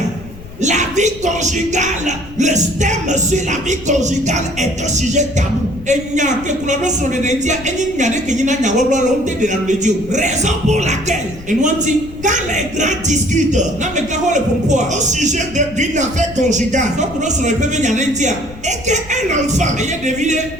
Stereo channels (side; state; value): left; noise; rumble, 16 dB below the sound